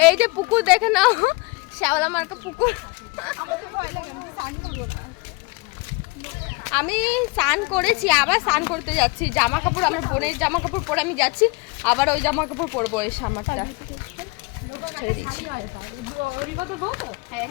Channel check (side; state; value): right; quieter; 27.2 dB